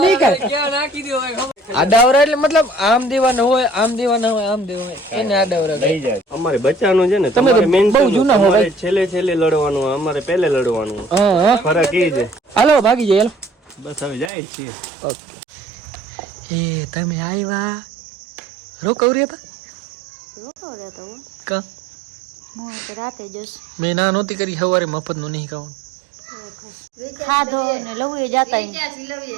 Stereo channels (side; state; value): left; drops out; at 14.3 s